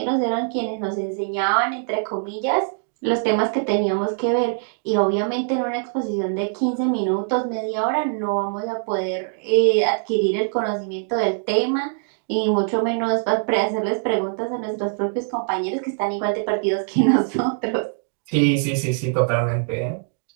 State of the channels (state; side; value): silent; left; digital silence